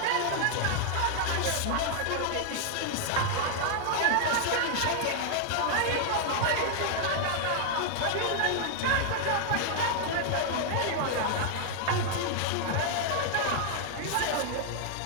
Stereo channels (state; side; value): different; both; correlation 0.00